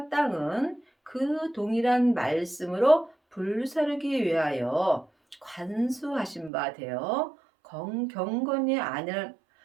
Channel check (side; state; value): left; drops out; at 6.5 s